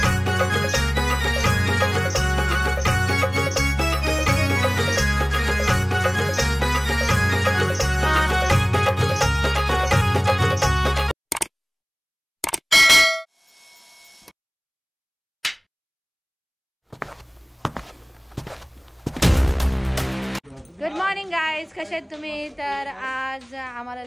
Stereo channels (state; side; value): identical; both; correlation 1.00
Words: गुड मॉर्निंग गाईज, कसे आहेत तुम्ही? तर आज आम्हाला